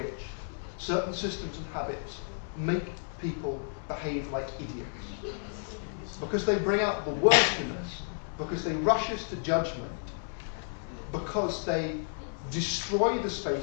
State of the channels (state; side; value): silent; right; 57 dB below the other